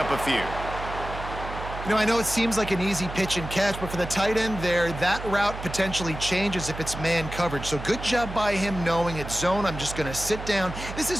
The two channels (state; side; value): noise; right; hum, 9 dB below the sound